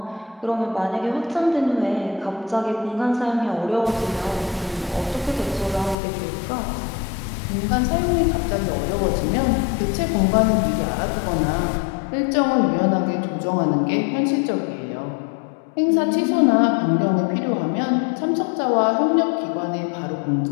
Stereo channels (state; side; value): drops out; right; at 6.0 s